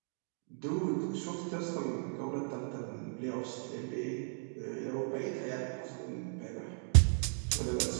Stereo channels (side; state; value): left; silent; 54 dB below the other